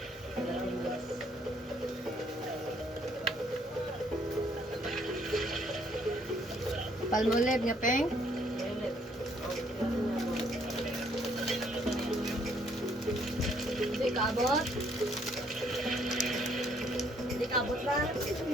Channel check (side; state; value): both; normal; correlation 0.66